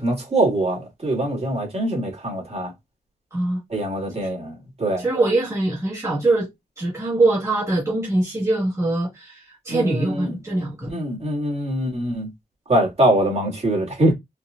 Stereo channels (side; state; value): both; normal; correlation 0.70